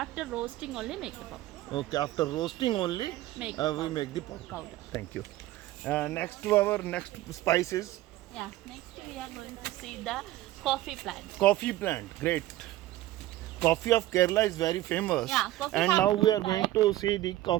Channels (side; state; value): left; quieter; 15.9 dB